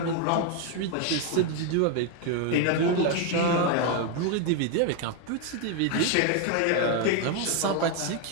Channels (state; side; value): different; both; correlation 0.01